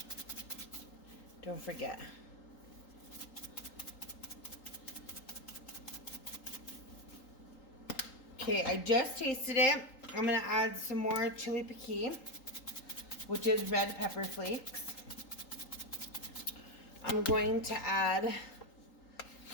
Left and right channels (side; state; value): right; late; 3.8 ms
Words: don't forget. Okay, I just tasted it. I'm gonna add some more chili piquin, which is red pepper flakes. I'm going to add